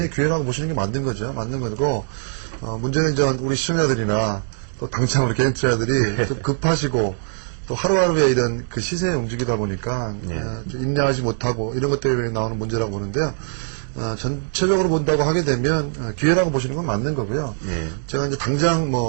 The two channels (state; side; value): silent; left; digital silence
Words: 기회라고 보시는 게 맞는 거죠. 맞는 거고 문제는 이제 우리 시청자들이나 또 당장 우리 개인 투자자들이 좀 급하시고 또 하루하루에 이런 그 시세에 움직이다 보니까 인내하지 못하고 이런 것 때문에 나오는 문제라고 보는데요. 전체적으로 본다고 하게 되면 기회라고 보시는 건 맞는 거고요. 제가 이제 당장